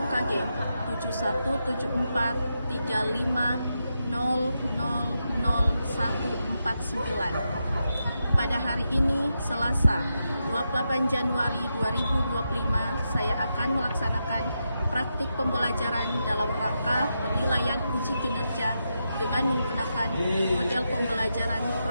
UKG 717435000149. Pada hari ini, Selasa, 28 Januari 2025, saya akan melaksanakan praktik pembelajaran dalam rangka penilaian uji kinerja dengan menggunakan model pembelajaran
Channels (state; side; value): inverted; both; correlation -0.86